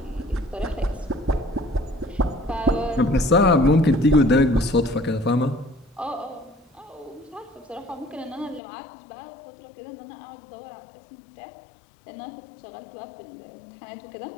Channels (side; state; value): right; drops out; at 8.6 s